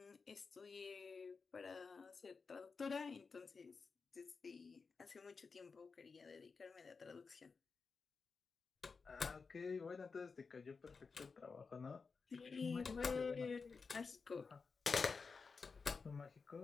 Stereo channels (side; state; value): right; quieter; 4.9 dB